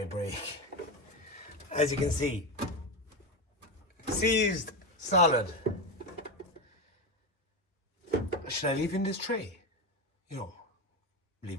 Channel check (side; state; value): both; normal; correlation 0.16